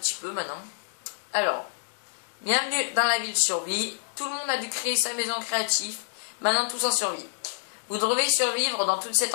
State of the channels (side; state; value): right; silent; digital silence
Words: peu maintenant. Alors, bienvenue dans la ville survie. Tout le monde a dû créer sa maison créative. Maintenant tous en survie. Vous devez survivre dans tout cet